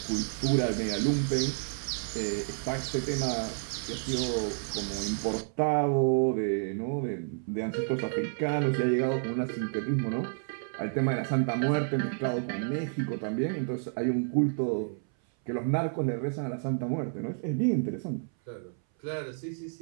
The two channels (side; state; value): left; silent; 58 dB below the other